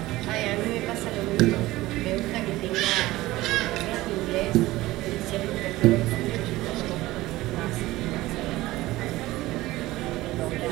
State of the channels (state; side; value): quieter; left; 17.9 dB